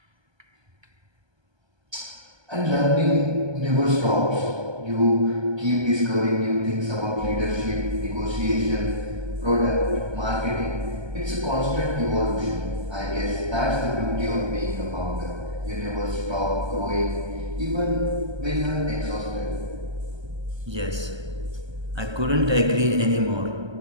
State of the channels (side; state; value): left; late; 1.3 ms